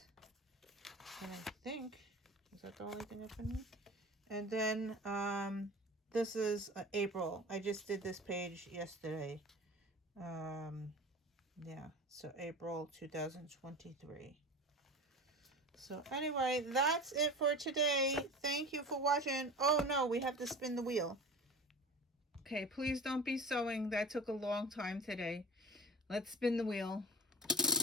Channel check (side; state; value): both; normal; correlation 0.34